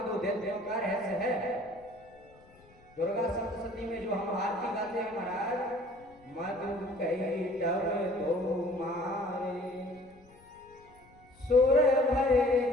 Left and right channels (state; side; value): noise; left; rumble, 27 dB below the sound